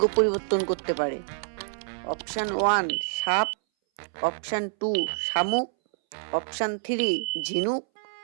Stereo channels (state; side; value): silent; left; 60 dB below the other